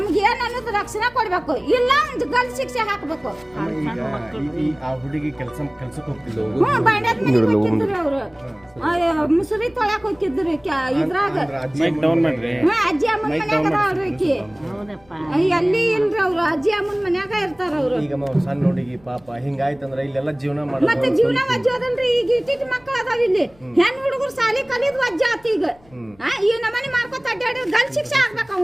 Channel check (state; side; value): noise; left; rumble, 29 dB below the sound